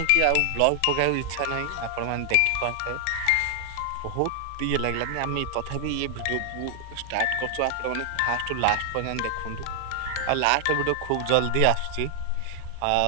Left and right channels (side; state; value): both; different; correlation 0.00